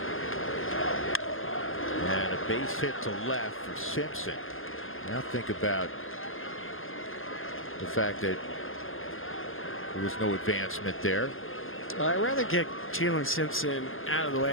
And a base hit to left for Simpson. Now think about the fact that there was no advancement there. I'd rather get Chandler Simpson out of the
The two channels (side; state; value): right; late; 0.59 ms